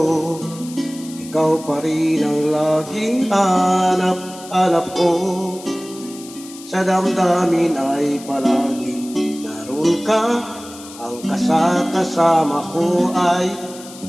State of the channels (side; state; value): left; noise; hiss, 17 dB below the sound